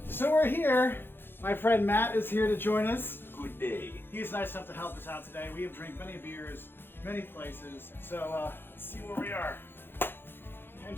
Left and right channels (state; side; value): late; right; 0.10 ms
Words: So we're here. My friend Matt is here to join us. Good day. He's nice enough to help us out today. We have drank many beers, many places, so let's see where we are. And